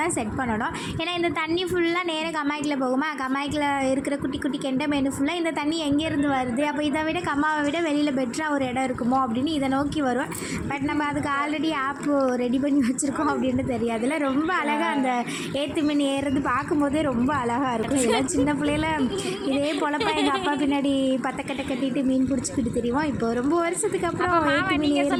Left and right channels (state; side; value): identical; both; correlation 1.00